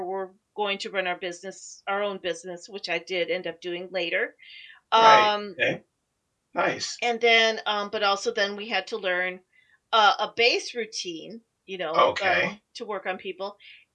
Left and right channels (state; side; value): identical; both; correlation 1.00